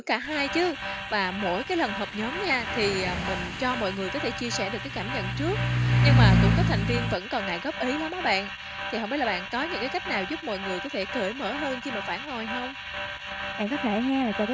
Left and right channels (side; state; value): both; identical; correlation 1.00